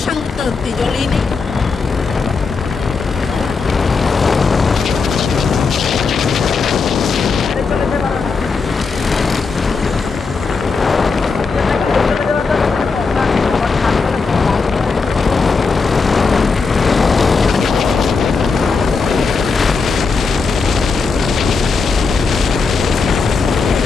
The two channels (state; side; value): quieter; right; 4.7 dB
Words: সাংতে হতে জলেই নেই।